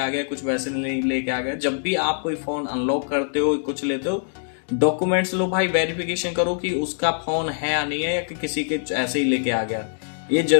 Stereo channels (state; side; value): silent; right; digital silence